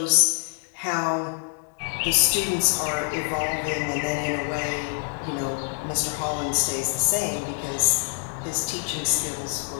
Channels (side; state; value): right; silent; 59 dB below the other